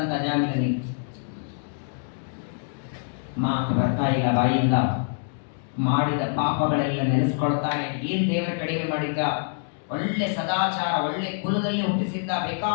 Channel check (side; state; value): right; silent; 61 dB below the other